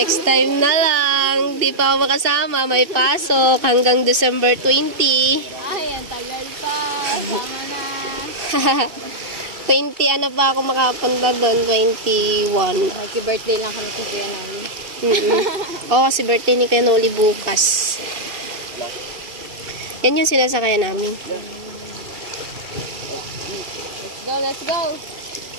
time na lang. Di pa ako makasama. May pasok hanggang December 20. Ay, ang tagal pa. Sama na. 20 pa ako makapunta doon? 21. Happy birthday lang kami kay Kuya Noli. Oo, kasi birthday ni Kuya Noli bukas. Yan yung sinasakayan namin. Let's go!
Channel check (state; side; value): late; left; 2.6 ms